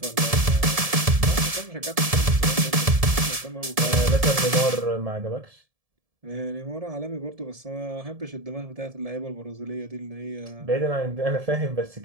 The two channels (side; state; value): left; late; 1.7 ms